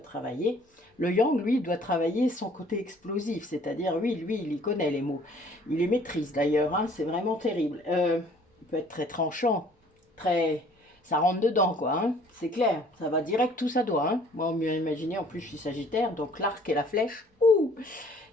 Le yang, lui, doit travailler son côté explosif, c'est-à-dire, oui, lui, il y connaît les mots. Il les maîtrise d'ailleurs, hein, c'est vraiment terrible. Il peut être très tranchant, très... Ça rentre dedans, quoi, hein, c'est clair. Ça va direct où ça doit. Hein. Moi, on m'a imaginé, en plus, je suis sagittaire, donc l'arc et la flèche, ouh,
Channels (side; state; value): both; normal; correlation 0.56